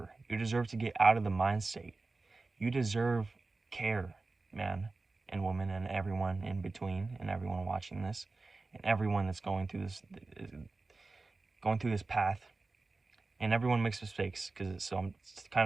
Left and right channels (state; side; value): quieter; left; 3.6 dB